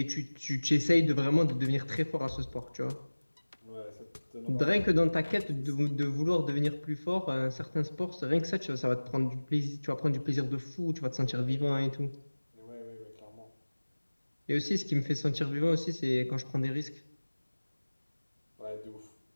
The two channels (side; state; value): both; inverted; correlation -1.00